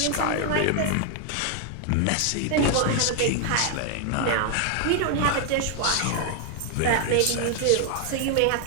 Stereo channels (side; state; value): both; different; correlation 0.00